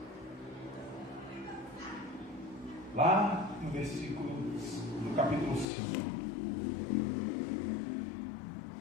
Lá no versículo do capítulo 5.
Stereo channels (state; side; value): drops out; right; at 5.7 s